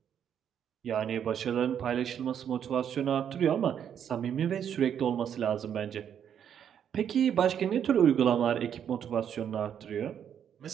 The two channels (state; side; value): quieter; left; 8.8 dB